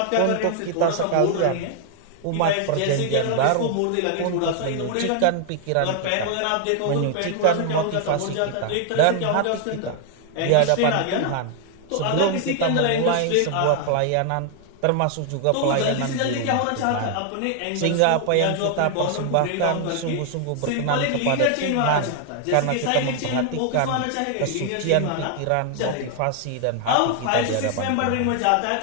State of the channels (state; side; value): different; both; correlation 0.00